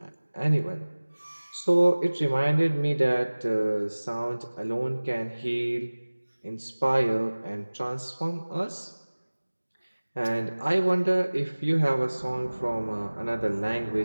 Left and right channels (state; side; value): inverted; both; correlation -1.00